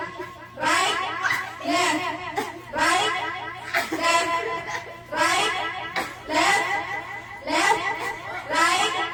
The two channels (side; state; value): both; identical; correlation 1.00